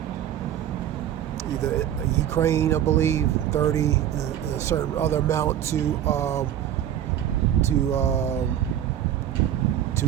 either Ukraine, I believe, 30, a certain other amount to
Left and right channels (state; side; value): quieter; left; 10.8 dB